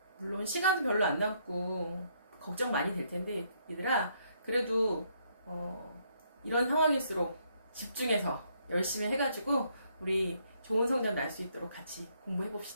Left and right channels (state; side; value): inverted; both; correlation -0.71